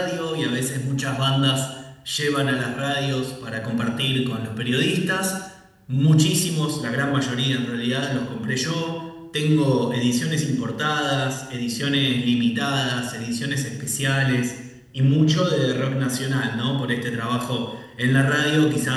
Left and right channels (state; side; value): identical; both; correlation 1.00